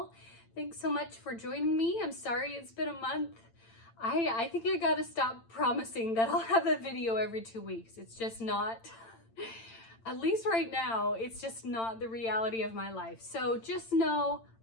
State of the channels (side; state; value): right; late; 8.9 ms